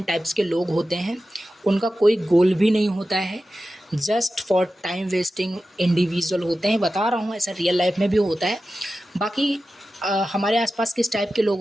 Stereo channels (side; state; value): both; normal; correlation 0.93